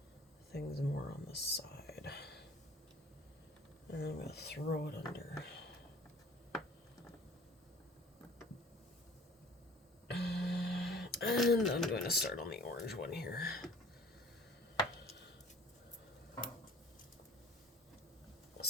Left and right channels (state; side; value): normal; both; correlation 0.49